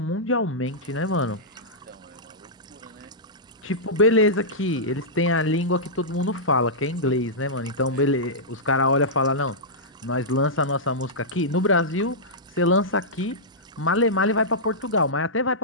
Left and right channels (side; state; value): both; normal; correlation -0.13